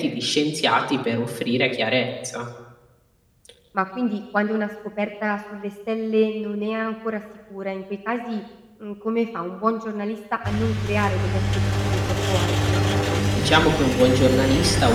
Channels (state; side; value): identical; both; correlation 1.00